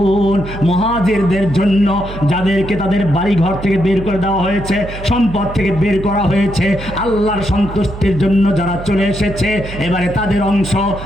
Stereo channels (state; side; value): noise; right; hum, 11 dB below the sound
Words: মুহাজিরদের জন্য যাদেরকে তাদের বাড়ি ঘর থেকে বের করে দেওয়া হয়েছে, সম্পদ থেকে বের করা হয়েছে, আল্লাহর সন্তুষ্টির জন্য যারা চলে এসেছে, এবারে তাদের অংশ